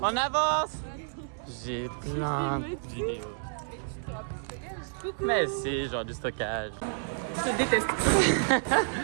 On avance. J'ai plein de vidéos. Mais si, genre du stockage. Je déteste.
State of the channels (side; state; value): left; silent; digital silence